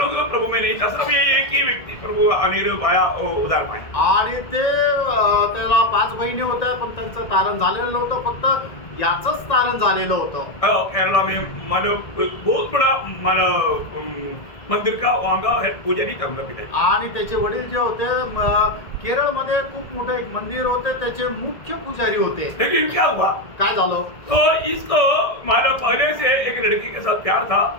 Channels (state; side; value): late; right; 1.7 ms